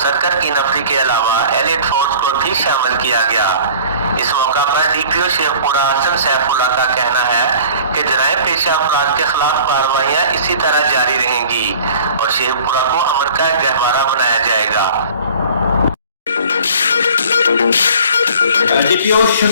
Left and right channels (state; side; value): inverted; both; correlation -0.46